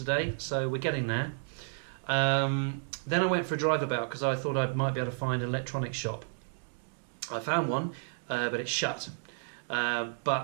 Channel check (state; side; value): silent; left; digital silence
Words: so we're getting there. Then I went for a drive about because I thought I might be able to find an electronics shop. I found one, but it's shut.